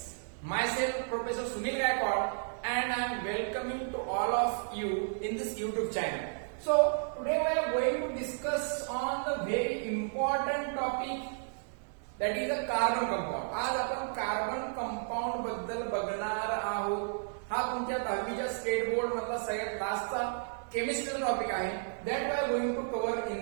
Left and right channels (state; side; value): silent; left; digital silence